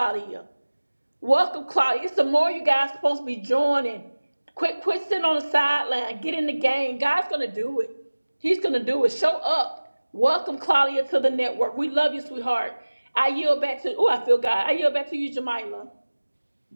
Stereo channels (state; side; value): inverted; both; correlation -1.00